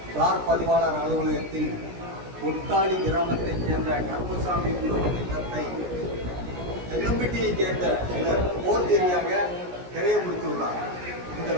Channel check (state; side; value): late; left; 17 ms